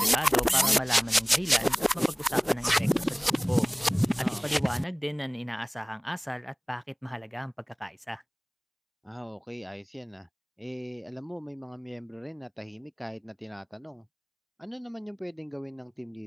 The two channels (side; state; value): both; identical; correlation 1.00